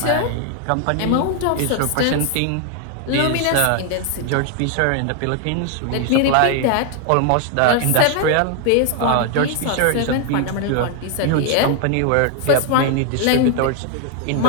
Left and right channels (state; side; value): different; both; correlation 0.01